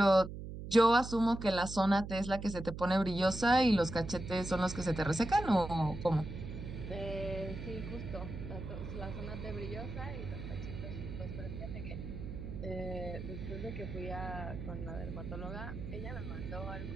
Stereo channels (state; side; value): noise; right; hum, 8 dB below the sound